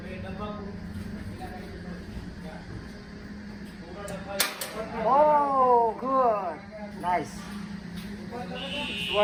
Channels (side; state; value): both; identical; correlation 1.00